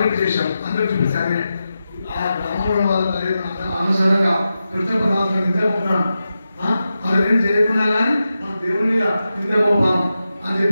చేశాం. అందరూ చూపించాలి ఆ గ్రామంలో వాళ్ళ అనుసరంగా కృష్ణపదార్థం నిద్రపోతున్నాను అదేం చేయకుండా కానీ మన దేవుని మీద నిద్రపోపాం అని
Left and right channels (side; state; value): both; inverted; correlation -0.91